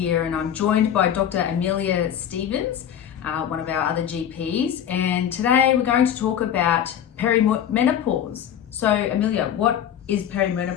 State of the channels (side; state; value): right; quieter; 9.6 dB